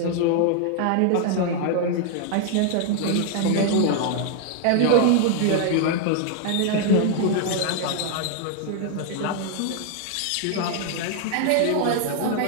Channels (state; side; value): different; both; correlation 0.00